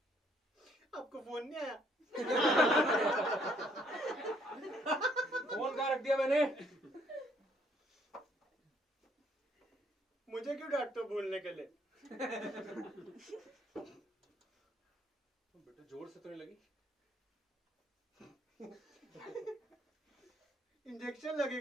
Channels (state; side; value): normal; both; correlation 0.67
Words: आपको फोन नहीं आया? फोन कहाँ रख दिया मैंने? मुझे क्यों डांटते हो भूलने के लिए? बेटा जोर से तो नहीं लगी? इंजेक्शन